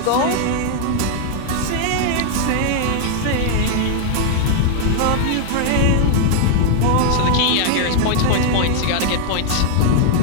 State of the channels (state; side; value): different; both; correlation 0.00